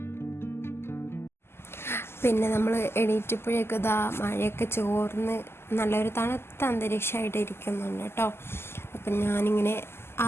പിന്നെ നമ്മൾ എണീറ്റപ്പോഴേക്കും ഇതാ മഴയൊക്കെ ചോർന്ന് നല്ലൊരു തണുത്ത അന്തരീക്ഷമായിട്ട് ഇരിക്കുന്നുണ്ട് കേട്ടോ. അപ്പം ഞാനിങ്ങനെ ആ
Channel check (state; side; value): late; right; 0.12 ms